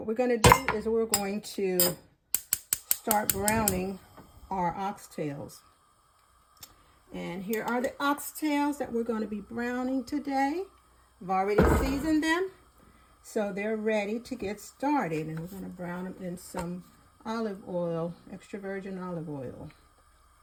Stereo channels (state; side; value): identical; both; correlation 1.00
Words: we're going to do is we're going to start browning our oxtails. And here are the oxtails that we're going to be browning today. I've already seasoned them, so they're ready to get started. And we're going to brown them in some olive oil, extra virgin olive oil.